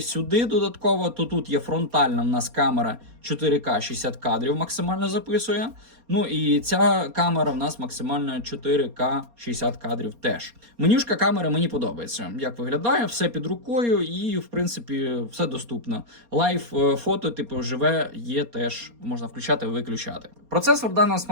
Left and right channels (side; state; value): left; late; 4.3 ms